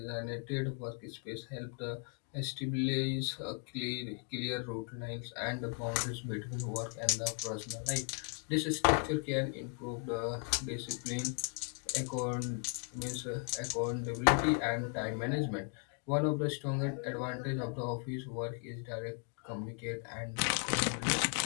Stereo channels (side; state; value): right; quieter; 37.0 dB